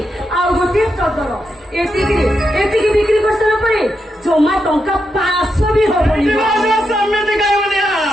आ गोटे चदर एतिकी बिक्री कर सारा परे जमा टंका 500 भी होबनी समिति गायबनिया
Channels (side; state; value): both; normal; correlation 0.84